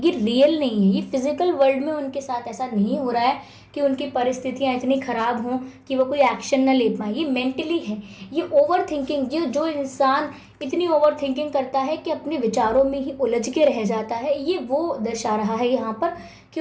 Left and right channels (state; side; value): identical; both; correlation 1.00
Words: रियल नहीं है। ये फिजिकल वर्ल्ड में उनके साथ ऐसा नहीं हो रहा है कि उनकी परिस्थितियाँ इतनी ख़राब हों कि वो कोई एक्शन ना ले पाए। ये मेंटली है। ये ओवर थिंकिंग, जो इंसान इतनी ओवर थिंकिंग करता है कि अपने विचारों में ही उलझ के रह जाता है, ये वो दर्शा रहा है यहाँ पर कि